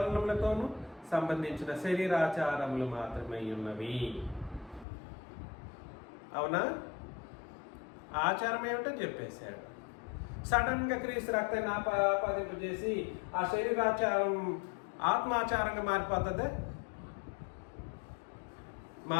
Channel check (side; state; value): right; drops out; at 4.9 s